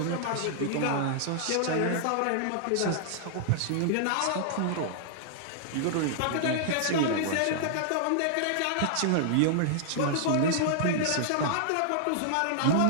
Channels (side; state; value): both; different; correlation -0.01